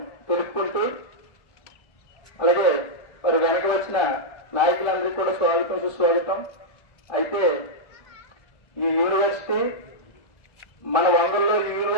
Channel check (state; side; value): late; right; 1.4 ms